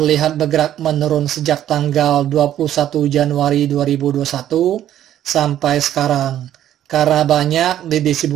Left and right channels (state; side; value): quieter; left; 11.5 dB